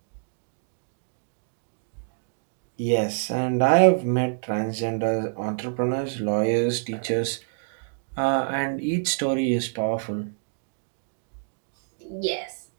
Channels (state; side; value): silent; left; digital silence